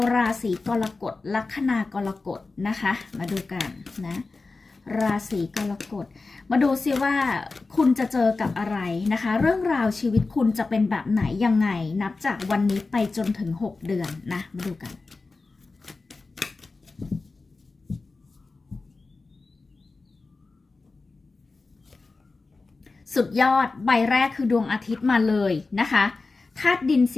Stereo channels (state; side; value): quieter; right; 3.8 dB